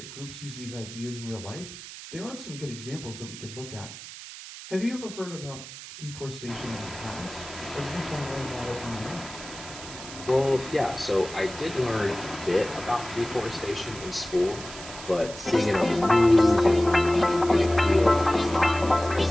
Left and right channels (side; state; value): right; noise; hiss, 13 dB below the sound